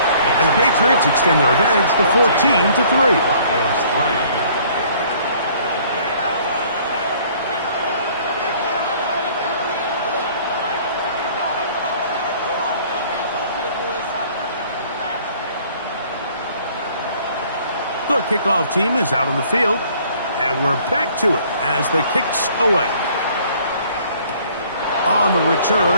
And the Patriots extend their advantage to 14-3. The kickoff team is out on the field, and we're back to it as the kick's away. On the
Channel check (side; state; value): both; inverted; correlation -0.57